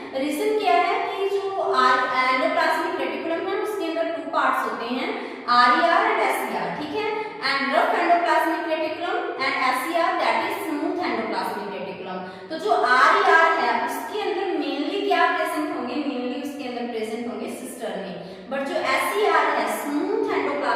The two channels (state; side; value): identical; both; correlation 1.00